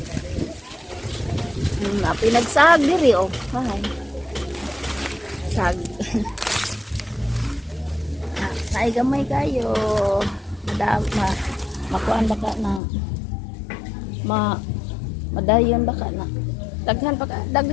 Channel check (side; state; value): right; drops out; at 12.8 s